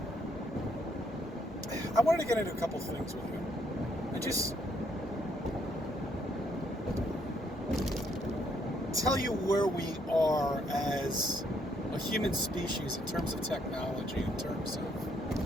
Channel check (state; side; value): normal; both; correlation 0.71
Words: I wanted to get into a couple things with you. And just tell you where we are as a human species in terms of technology, in terms of